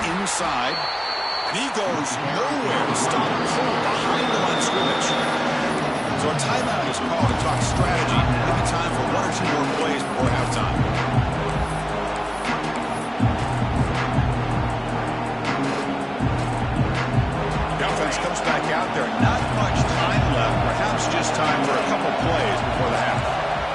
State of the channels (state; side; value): identical; both; correlation 1.00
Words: inside. And he goes nowhere. Stop pull behind the line of scrimmage. So a timeout is called to talk strategy. Maybe time for 1 or 2 more plays before halftime. Comes back out there. Not much time left. Perhaps just time for a couple plays before the half.